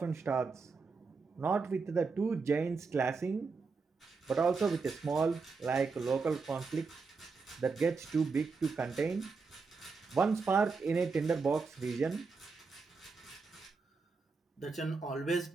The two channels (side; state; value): left; quieter; 4.6 dB